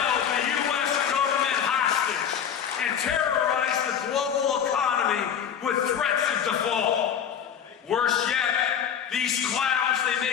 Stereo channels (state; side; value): quieter; right; 8.4 dB